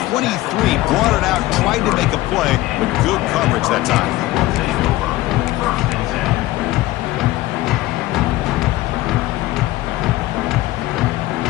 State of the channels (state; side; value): quieter; right; 17.4 dB